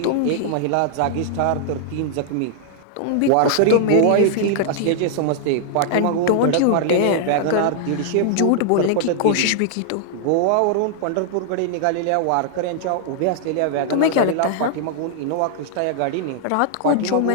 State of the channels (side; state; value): both; different; correlation -0.01